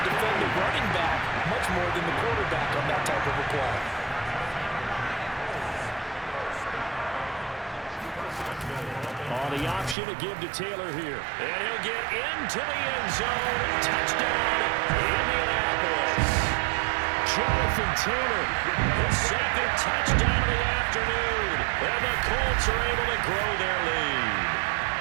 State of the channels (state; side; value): drops out; left; at 10.0 s